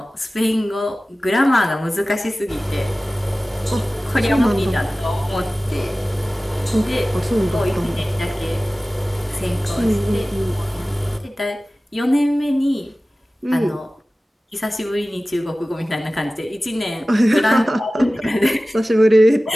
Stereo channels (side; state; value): both; normal; correlation 0.97